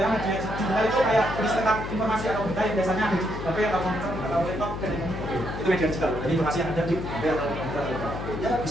media digital itu kayak tulis tentang informasi atau berita yang biasanya ada di HP atau komputer atau laptop. Itu media digital. Jadi informasi yang ada di HP atau komputer. Ya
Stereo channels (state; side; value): noise; left; hum, 6 dB below the sound